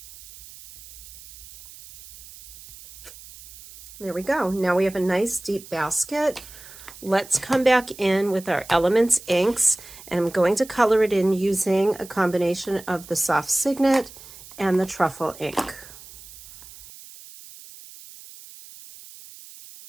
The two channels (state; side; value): noise; right; hiss, 18 dB below the sound